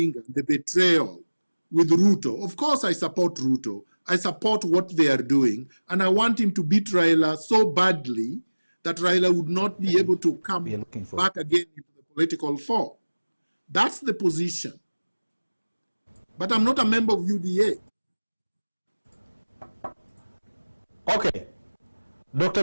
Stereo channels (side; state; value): both; inverted; correlation -1.00